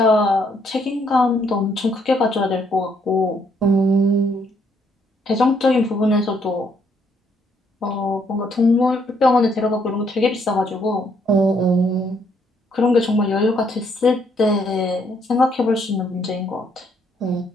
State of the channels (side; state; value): both; normal; correlation 0.70